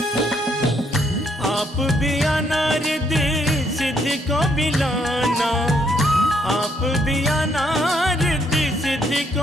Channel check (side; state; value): both; normal; correlation 0.71